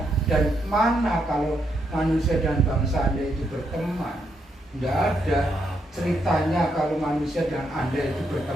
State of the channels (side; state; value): both; normal; correlation 0.79